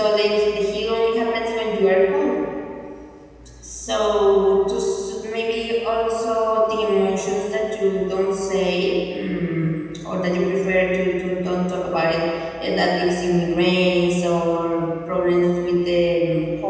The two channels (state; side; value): identical; both; correlation 1.00